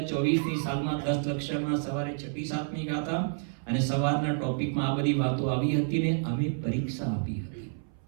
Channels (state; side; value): silent; left; 58 dB below the other